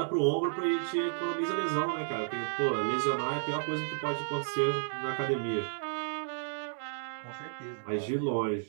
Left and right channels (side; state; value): left; silent; 56 dB below the other